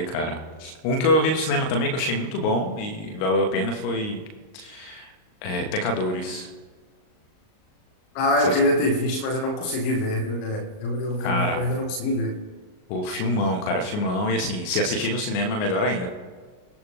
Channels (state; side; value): late; right; 38 ms